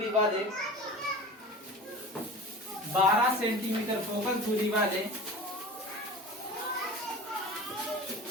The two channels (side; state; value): both; normal; correlation 0.36